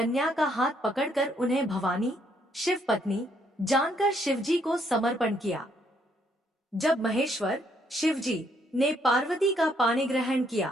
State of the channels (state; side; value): normal; both; correlation 0.70